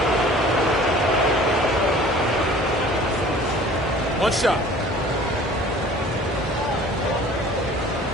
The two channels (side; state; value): both; normal; correlation 0.47